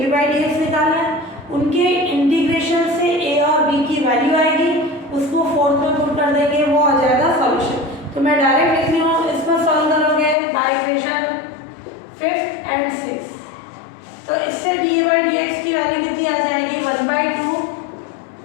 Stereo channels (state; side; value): drops out; right; at 10.4 s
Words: निकालना है, उनके इंटीग्रेशन से a और b की वैल्यू आएगी, उसको फोर्थ में पुट कर देंगे, वो आ जाएगा सॉल्यूशन। तो मैं डायरेक्ट लिख रही हूँ, इसको सॉल्व करोगे by equation 5th and 6th, तो इससे dA/dx की वैल्यू कितनी आ जाएगी 1/2